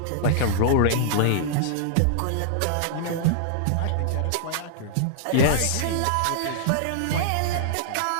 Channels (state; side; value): different; both; correlation -0.01